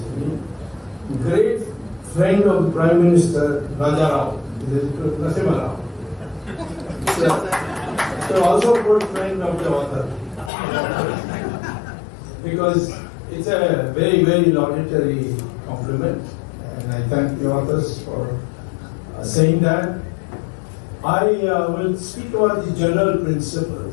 me. Great friend of the Prime Minister Raja Rao, Narasimha Rao. So also put friend of the author. Because it's a very, very laudatory compliment, and I thank the authors for saying that. I will speak about the general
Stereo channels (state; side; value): drops out; right; at 10.5 s